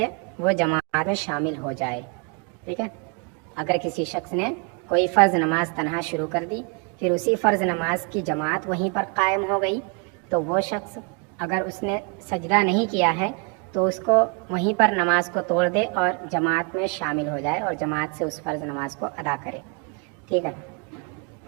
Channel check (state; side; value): quieter; left; 33.7 dB